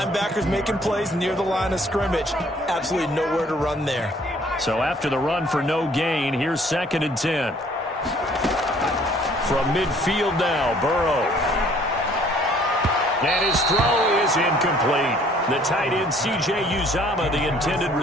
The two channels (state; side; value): normal; both; correlation 0.58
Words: making plays near the line of scrimmage. Absolutely nowhere to run there. So after the run for no gain, here's 2nd and 10. From midfield now, Burrow. And his throw is incomplete. The tight end, C.J. Uzomah, the intended